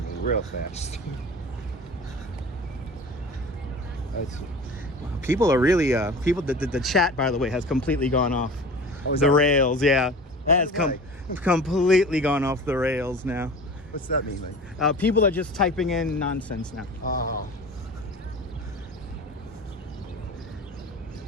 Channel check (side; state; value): both; normal; correlation 0.37